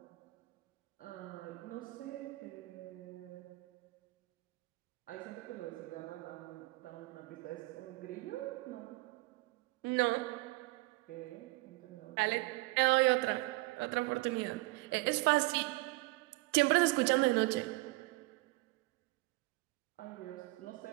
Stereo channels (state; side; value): quieter; left; 22.3 dB